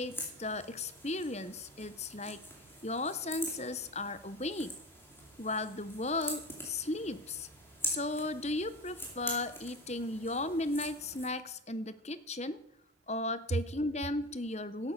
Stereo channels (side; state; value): both; normal; correlation 0.30